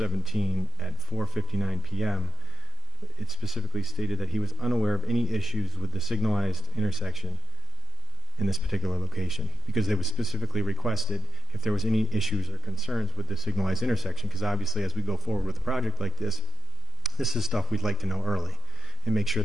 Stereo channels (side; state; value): both; normal; correlation 0.63